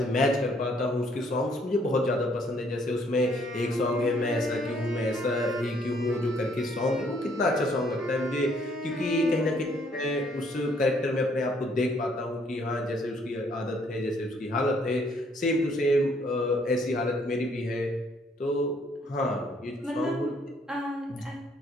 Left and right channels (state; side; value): normal; both; correlation 0.65